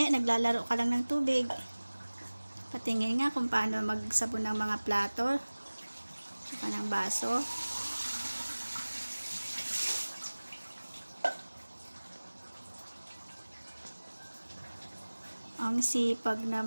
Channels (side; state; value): both; inverted; correlation -1.00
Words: naglalaro ka lang ng tubig. Patingin nga kung paano magsabon ng mga plato. Saka ng baso. Ang sipag